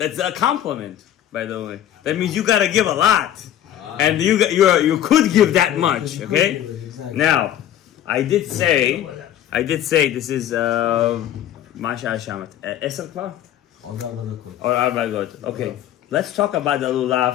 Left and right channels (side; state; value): right; quieter; 11.3 dB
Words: a compliment. By the way, that means you gotta give a lot, and you could give that much. Okay. Now, I did say this is Masha Hashamat. Esel kvar? Or 4 דקות. Okay. Let's talk about the